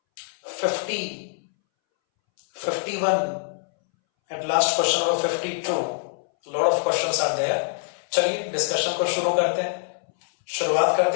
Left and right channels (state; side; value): silent; right; 62 dB below the other